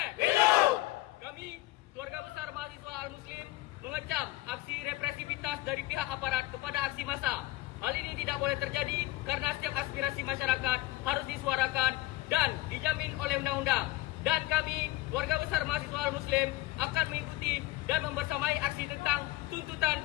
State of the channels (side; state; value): right; quieter; 17.9 dB